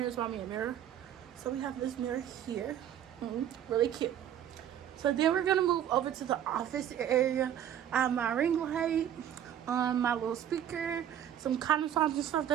bought me a mirror. So we have this mirror here, really cute. So then we're gonna move over to the office area. I have my ring light, my little speaker, some cotton swabs and stuff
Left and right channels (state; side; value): quieter; left; 10.2 dB